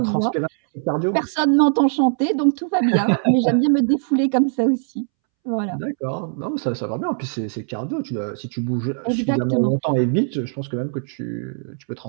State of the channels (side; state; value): left; silent; 65 dB below the other